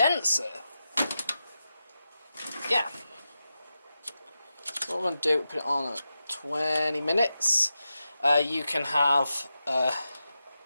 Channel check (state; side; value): inverted; both; correlation -0.91